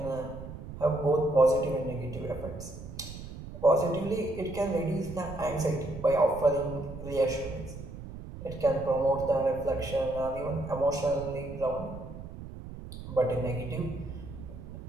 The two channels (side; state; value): right; noise; rumble, 11 dB below the sound